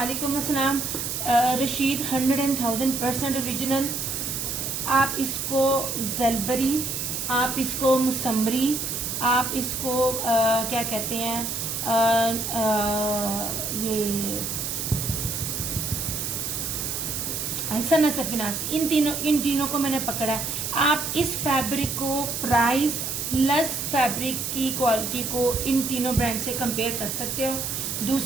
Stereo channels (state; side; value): noise; right; hiss, 3 dB below the sound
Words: अस्सलाम। रशीद 100,000% ओरिजिनल। आप इसको जलबरी, आप इसको मुसम्मरी, आप इसको क्या कहते हैं ये सना सफिनास, इन तीनों को मैंने पकड़ा है। आप इस फैब्रिक को प्राइस प्लस फैब्रिक की क्वालिटी को इन तीनों ब्रांड से कंपेयर कर सकते हो।